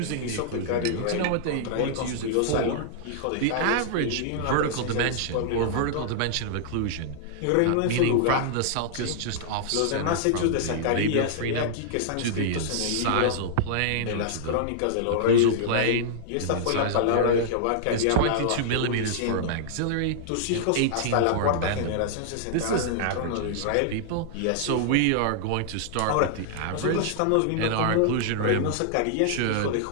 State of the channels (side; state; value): both; different; correlation -0.01